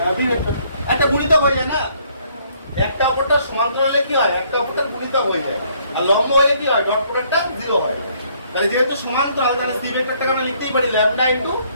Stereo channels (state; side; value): inverted; both; correlation -0.65